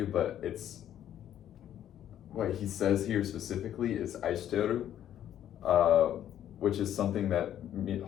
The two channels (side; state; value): right; quieter; 11.0 dB